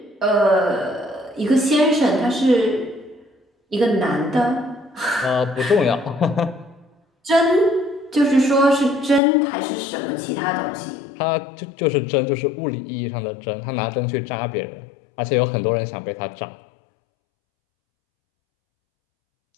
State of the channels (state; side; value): drops out; right; at 9.2 s